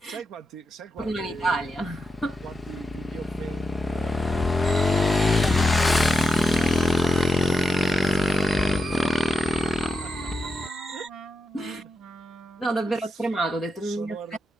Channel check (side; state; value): both; normal; correlation 0.87